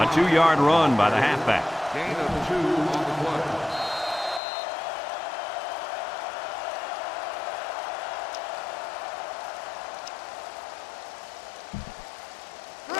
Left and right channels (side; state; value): right; drops out; at 4.4 s